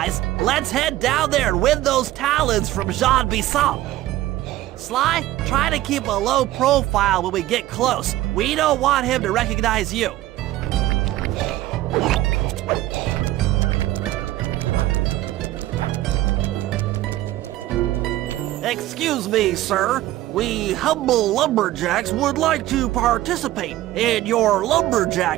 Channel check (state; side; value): quieter; left; 15.3 dB